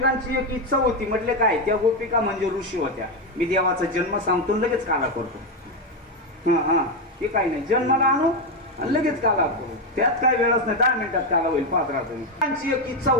एक इच्छा होती. म्हटले काय? त्या गोपिका म्हणजे ऋषी होत्या. मी देवाचा जन्म सांगतो लगेच काला करतो. हा ते काही नाही, जन्माला आणू आणि लगेच काला करू, त्यात काय वेळच नाही, 10 मिनिटात काला होईल. पाहत राहतो. त्यांची एक इच्छा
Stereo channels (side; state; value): both; normal; correlation 0.08